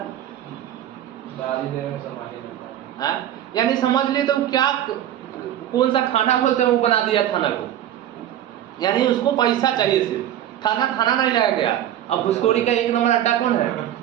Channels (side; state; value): left; quieter; 11.6 dB